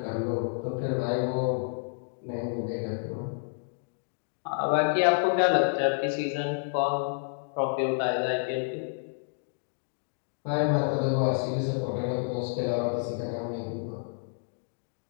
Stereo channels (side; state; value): right; silent; digital silence